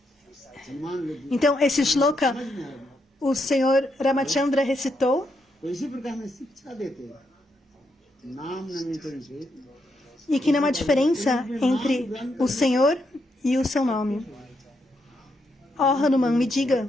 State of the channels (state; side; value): normal; both; correlation 0.80